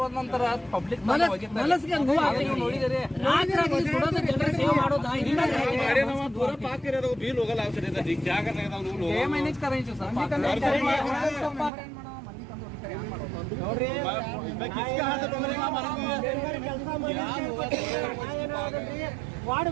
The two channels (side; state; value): left; drops out; at 11.7 s